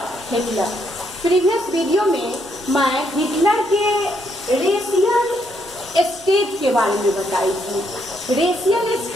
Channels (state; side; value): normal; both; correlation 0.74